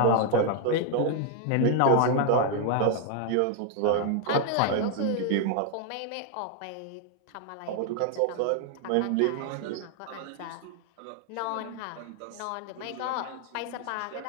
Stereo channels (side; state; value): both; different; correlation 0.00